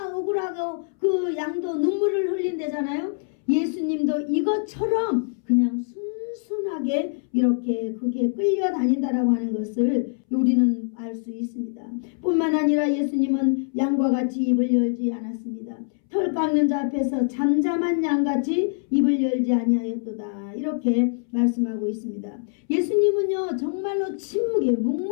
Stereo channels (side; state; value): right; silent; 62 dB below the other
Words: 억울하고 그 양도 눈물을 흘린대잖아요. 예수님도 이것처럼 그냥 순순하게 이렇게 그게 끌려다닌다라고 하는 것을 우리는 알 수 있습니다. 뿐만 아니라 예수님은 양과 같이 입을 열지 않았습니다. 털 깎는 자 앞에서 잠잠한 양같이 입을 열지 아니하였도다. 이렇게 말씀하고 있습니다. 예수님은요 정말로 침묵히